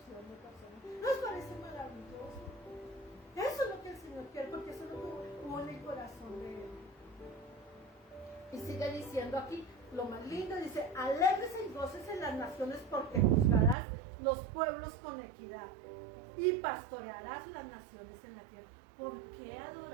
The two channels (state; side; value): drops out; left; at 13.8 s